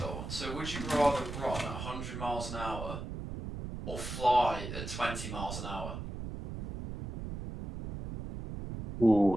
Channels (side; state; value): right; noise; rumble, 7 dB below the sound